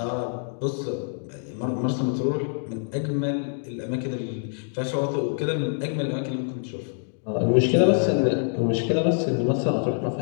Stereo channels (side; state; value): right; silent; digital silence